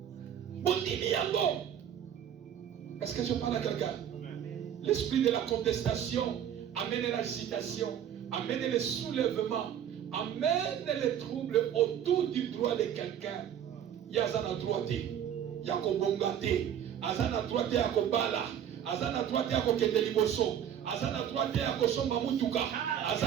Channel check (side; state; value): left; quieter; 9.6 dB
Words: Bondimi Yango. Est-ce que je parle à quelqu'un? L'esprit de la contestation amène l'agitation, amène le soulèvement, amène les troubles autour du droit de quelqu'un. Yazana droité, Yako Bongate, Azana droité Yako Bala, Azana droité Yako Kendeliboso, Azana droité Yako Somba Mutuka,